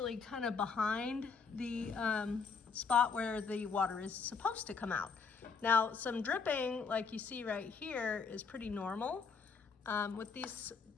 kind of behind the spot where the water is supposed to come out. Now, some dripping, like you see right here, is pretty normal with these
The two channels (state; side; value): quieter; right; 5.3 dB